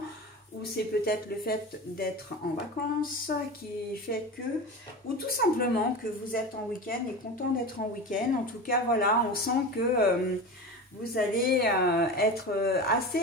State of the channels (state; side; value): normal; both; correlation 0.28